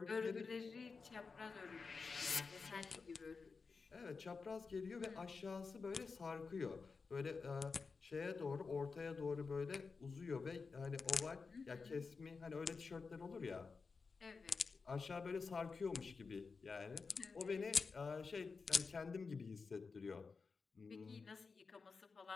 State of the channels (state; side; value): quieter; right; 4.7 dB